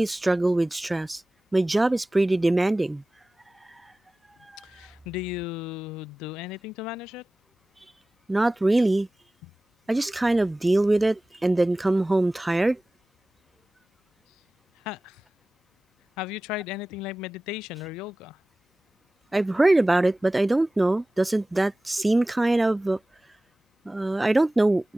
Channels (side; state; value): both; normal; correlation 0.97